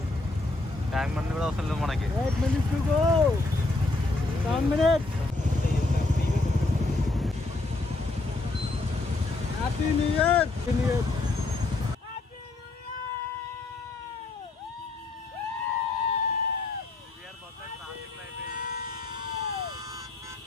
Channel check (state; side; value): quieter; right; 3.2 dB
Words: ట్యాంక్ బండ్ కూడా అవసరం లేదు మనకి. Happy new year.